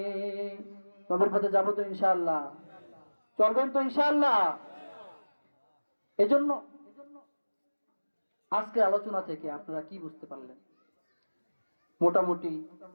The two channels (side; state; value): both; inverted; correlation -1.00